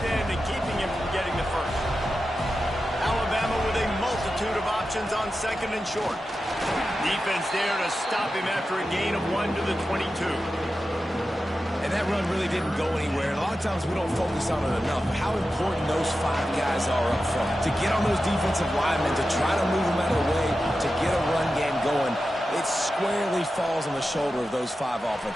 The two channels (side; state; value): both; normal; correlation 0.92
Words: end and keeping him from getting the first? Alabama with a multitude of options on second and short. Defense there to stop him after a gain of 1 to the 22. And that run really didn't go anywhere. And a lot of times we don't focus on it enough. How important those 5 guys are up front. To get on those defensive linemen, to try to move them out of the way, to get a run game going, it squarely falls on the shoulder of those 5